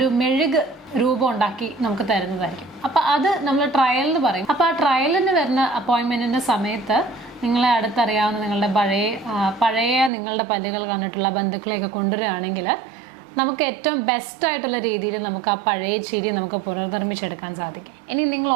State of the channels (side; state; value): left; drops out; at 10.1 s